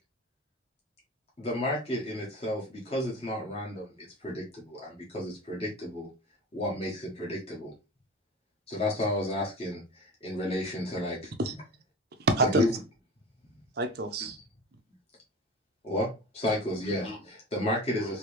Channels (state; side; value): normal; both; correlation 0.33